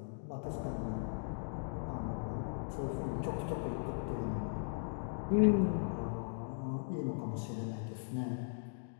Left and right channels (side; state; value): right; silent; digital silence